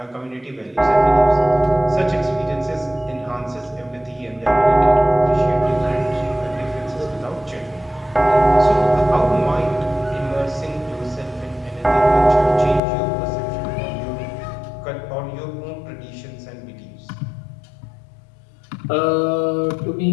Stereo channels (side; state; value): right; drops out; at 12.8 s